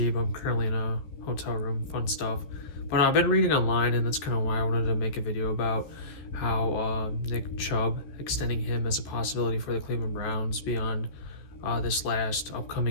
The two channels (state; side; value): late; right; 14 ms